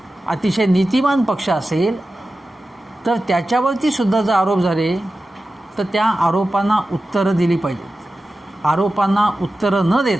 अतिशय नीतिमान पक्ष असेल तर त्याच्यावरती सुद्धा जर आरोप झाले तर त्या आरोपांना उत्तरं दिली पाहिजेत. आरोपांना उत्तरं न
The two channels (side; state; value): both; normal; correlation 0.94